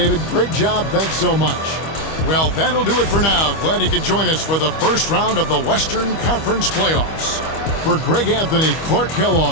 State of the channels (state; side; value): late; right; 25 ms